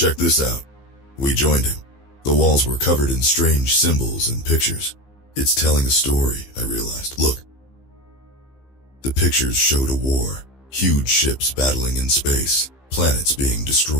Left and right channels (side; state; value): right; late; 15 ms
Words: this out." We joined him. The walls were covered in strange symbols and pictures. "It's telling a story," I realized. "Look." The pictures showed a war. Huge ships battling in space. Planets being